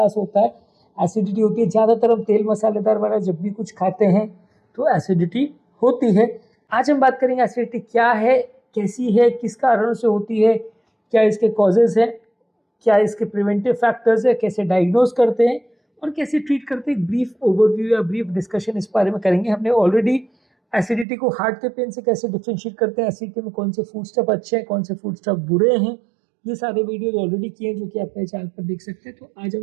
होता है, एसिडिटी होती है। ज़्यादातर हम तेल मसालेदार वाला जब भी कुछ खाते हैं तो एसिडिटी होती है। आज हम बात करेंगे एसिडिटी क्या है, कैसी है, किस कारण से होती है, क्या इसके कॉजेज़ हैं, क्या इसके प्रिवेंटिव फैक्टर्स है, कैसे डायग्नोज करते हैं और कैसे ट्रीट करते हैं। ब्रीफ ओवरव्यू या ब्रीफ डिस्कशन इस बारे में करेंगे। हमने ऑलरेडी एसिडिटी को हार्ट के पेन से कैसे डिफरेंशिएट करते हैं, एसिडिटी में कौन से फूड स्टफ अच्छे हैं, कौन से फूड स्टफ बुरे हैं, ये सारे वीडियोज ऑलरेडी किए हैं जो कि आप मेरे चैनल पर देख सकते हैं। तो आज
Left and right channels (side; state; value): left; drops out; at 21.1 s